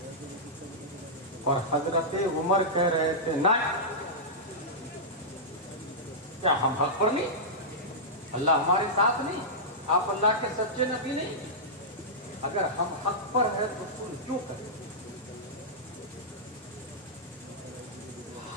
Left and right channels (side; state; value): both; normal; correlation -0.12